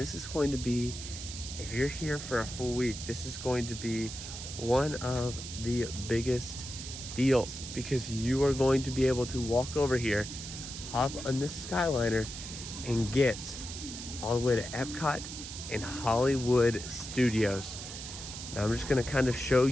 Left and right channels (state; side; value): noise; right; hiss, 9 dB below the sound